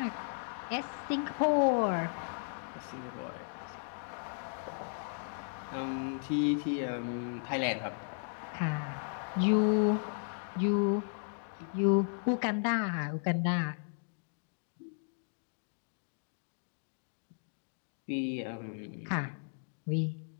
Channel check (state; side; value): silent; right; digital silence